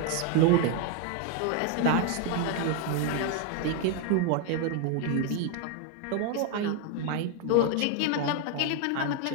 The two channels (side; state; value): both; different; correlation 0.01